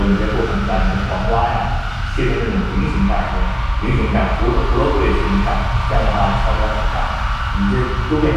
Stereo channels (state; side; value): identical; both; correlation 1.00